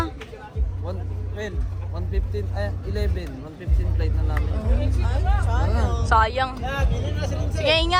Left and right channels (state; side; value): identical; both; correlation 1.00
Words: 115, 115 flight na namin. Sayang. Sige,